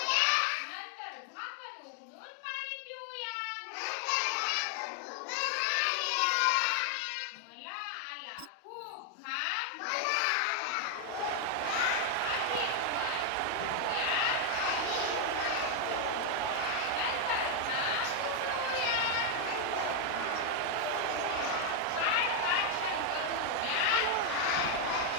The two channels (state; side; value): different; both; correlation 0.01